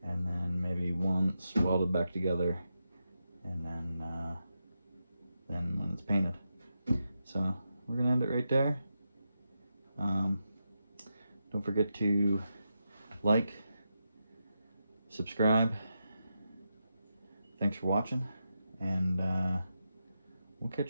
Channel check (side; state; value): both; inverted; correlation -0.87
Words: And then maybe once welded back together, and then when it's painted. So we're gonna end it right there. Don't forget to like, subscribe. Thanks for watching, and we'll